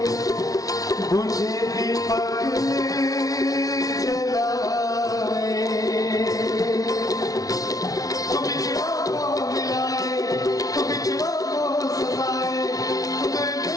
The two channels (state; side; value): late; right; 0.18 ms